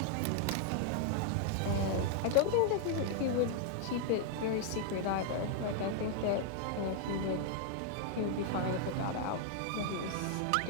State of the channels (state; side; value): different; both; correlation 0.00